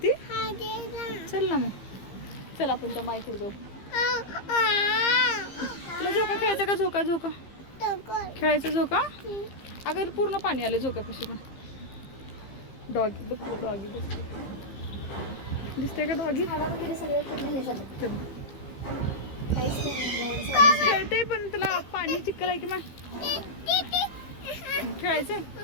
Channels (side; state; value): right; late; 15 ms